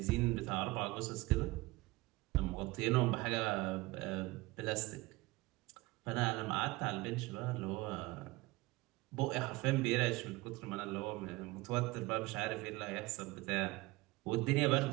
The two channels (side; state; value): left; quieter; 21.5 dB